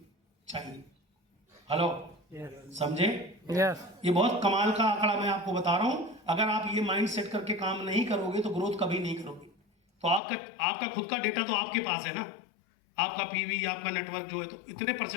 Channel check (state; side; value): drops out; right; at 10.2 s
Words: चाहिए। हेलो, समझे? Yes. ये बहुत कमाल का आंकड़ा मैं आपको बता रहा हूं। अगर आप ये माइंड सेट करके काम नहीं करोगे तो ग्रोथ कभी नहीं करोगे। तो आपका खुद का डेटा तो आपके पास है ना, आपका पीवी, आपका नेटवर्क जो है, तो इतने